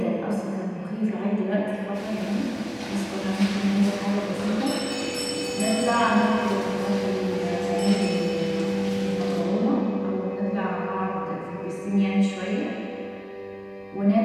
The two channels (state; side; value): identical; both; correlation 1.00